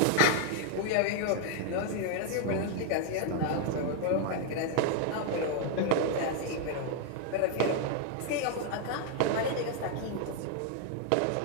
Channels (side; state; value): both; different; correlation 0.00